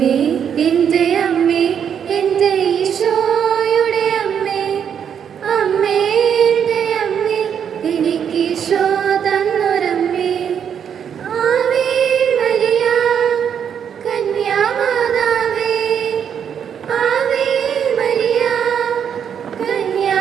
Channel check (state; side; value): quieter; left; 8.1 dB